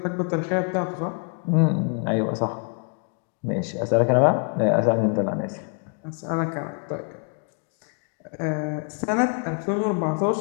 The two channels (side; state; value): right; quieter; 38.2 dB